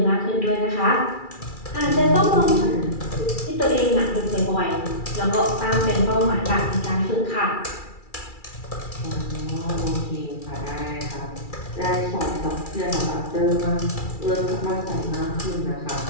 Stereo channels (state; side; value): late; right; 2.4 ms